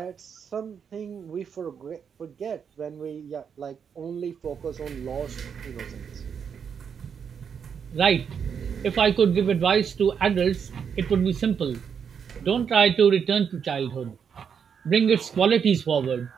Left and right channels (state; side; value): quieter; left; 7.1 dB